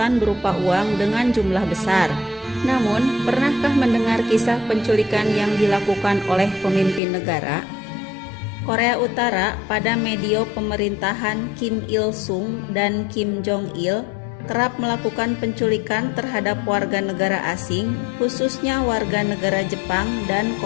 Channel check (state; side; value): drops out; right; at 7.0 s